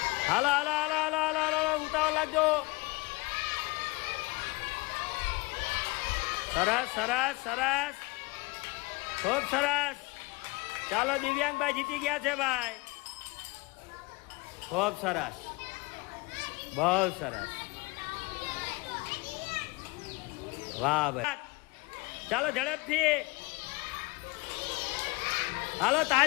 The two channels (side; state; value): right; quieter; 24.9 dB